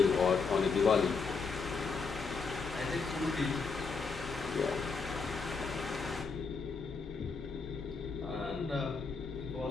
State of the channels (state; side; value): quieter; right; 4.9 dB